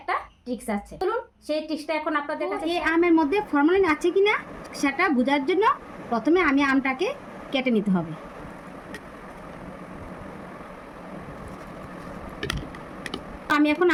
ট্রিক্স আছে। চলুন সেই ট্রিক্সটা এখন আপনাদের কাছে। এই আমের মধ্যে ফরমালিন আছে কিনা সেটা বোঝার জন্য প্রথমে আমি আমটাকে কেটে নিতে হবে। আমি এখন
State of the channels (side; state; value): both; identical; correlation 1.00